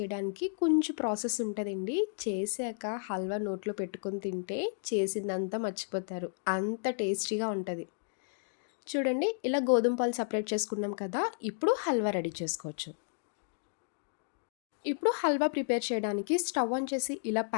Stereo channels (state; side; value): silent; right; digital silence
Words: కొంచెం ప్రాసెస్ ఉంటదండి. చేశాక హల్వా నోట్లో పెట్టుకొని తింటే చేసిందంతా మర్చిపోతారు. అంత టేస్టీగా ఉంటది. చూడండి ఇలా గోధుమ పాలు సెపరేట్ చేసుకున్నాం కదా! ఇప్పుడు హల్వా రెడీ చేసుకోవచ్చు. ఇప్పుడు హల్వా ప్రిపేర్ చేయడానికి స్టవ్ ఆన్ చేసి ఇలా